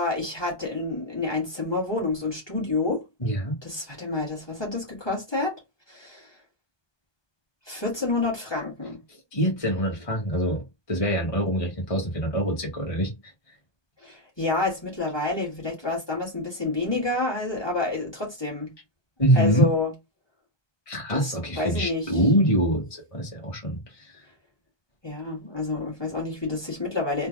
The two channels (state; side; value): late; right; 1.2 ms